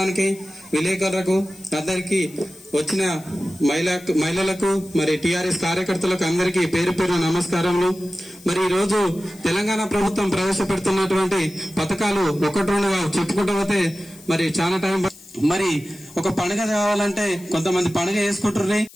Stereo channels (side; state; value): left; noise; hiss, 22 dB below the sound